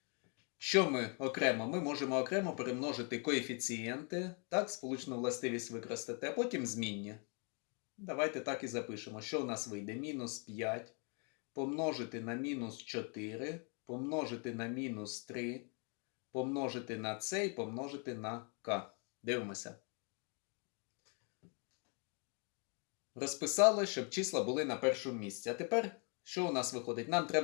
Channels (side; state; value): right; quieter; 37.2 dB